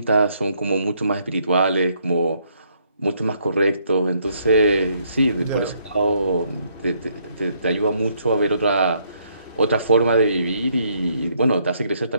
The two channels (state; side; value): inverted; both; correlation -0.71